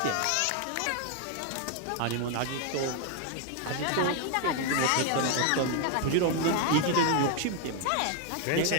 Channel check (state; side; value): different; both; correlation 0.00